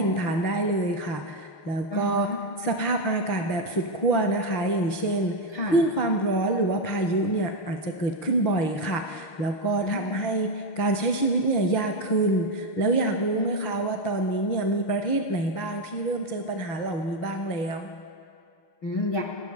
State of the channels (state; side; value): late; right; 6.6 ms